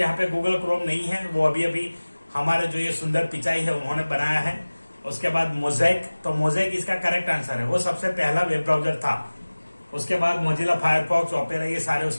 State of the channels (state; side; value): inverted; both; correlation -1.00